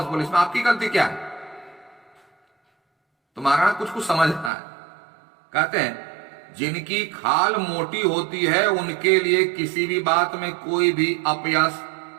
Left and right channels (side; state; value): left; drops out; at 4.5 s